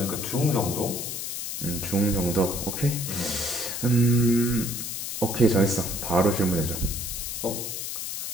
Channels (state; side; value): noise; left; hiss, 5 dB below the sound